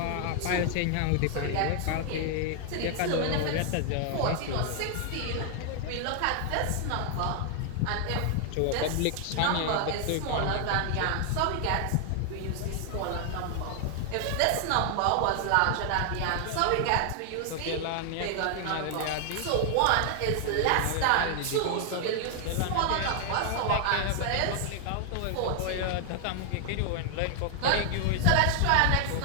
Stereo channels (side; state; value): both; different; correlation 0.00